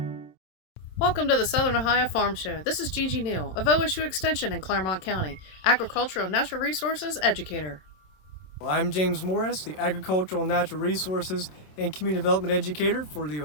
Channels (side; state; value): right; late; 27 ms